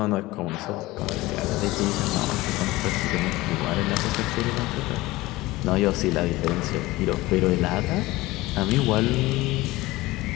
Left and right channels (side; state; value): right; quieter; 19.4 dB